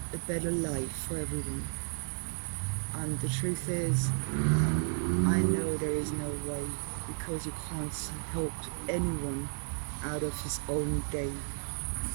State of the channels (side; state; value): left; silent; 56 dB below the other